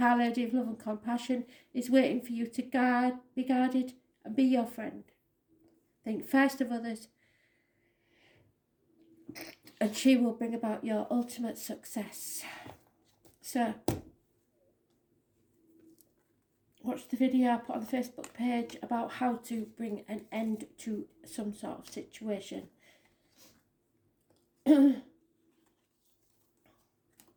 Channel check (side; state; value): both; identical; correlation 1.00